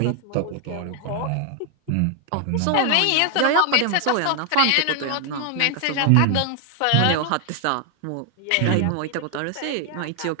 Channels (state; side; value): different; both; correlation 0.00